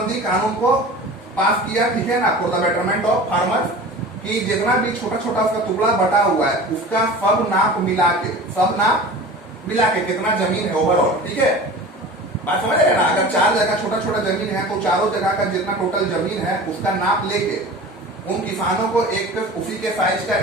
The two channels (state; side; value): normal; both; correlation 0.37